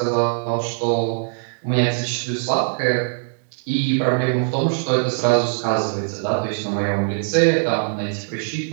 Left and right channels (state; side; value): silent; left; digital silence